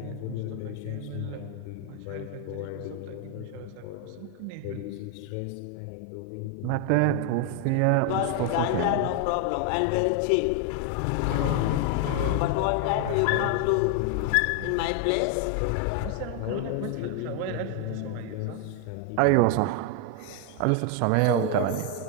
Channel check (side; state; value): both; different; correlation 0.00